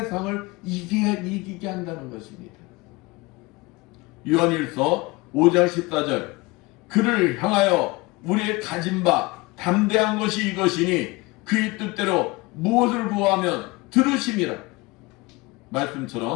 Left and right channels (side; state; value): right; quieter; 23.3 dB